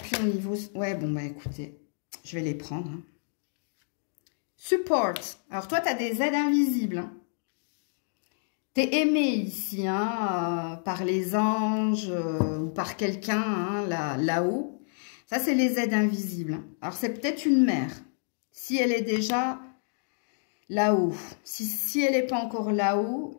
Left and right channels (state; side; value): silent; right; digital silence